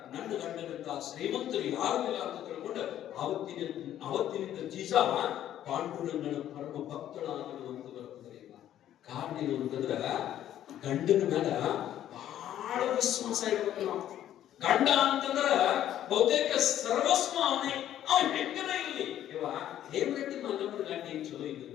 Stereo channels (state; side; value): quieter; right; 11.6 dB